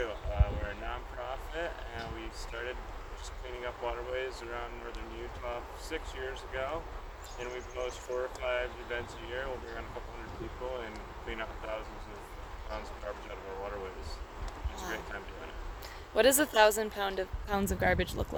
We're a nonprofit, and we started just cleaning up waterways around northern Utah 6 years ago. And we post 4 or 5 events a year. We'll bring on a couple hundred people and clean up thousands of pounds of garbage out of our waterways. It's a great time doing it. What does 1,000 pounds of garbage look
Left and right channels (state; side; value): identical; both; correlation 1.00